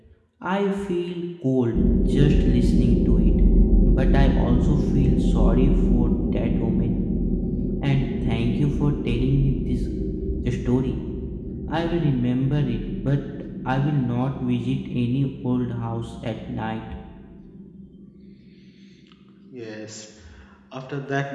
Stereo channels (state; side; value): identical; both; correlation 1.00